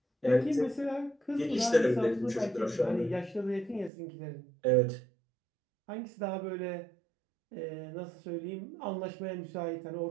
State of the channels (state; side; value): drops out; left; at 3.9 s